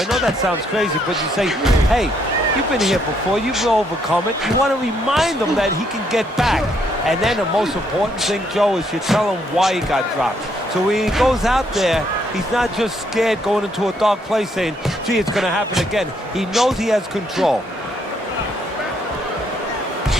know that sounds crazy, but you say, hey, you've been here before, you've overcome it. You want to remind him that he can get back. And then the most important thing, Joe, is you tell him why he got dropped. So when he goes out there, he's not just scared going into a dark place saying, gee, it's going to happen again. He knows he has control.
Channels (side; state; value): both; normal; correlation 0.72